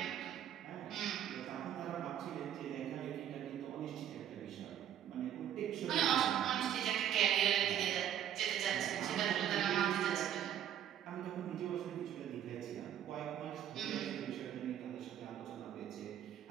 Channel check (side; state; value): left; quieter; 10.3 dB